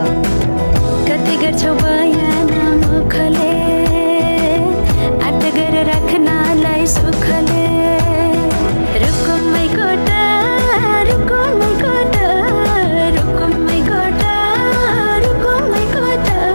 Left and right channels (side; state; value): both; inverted; correlation -1.00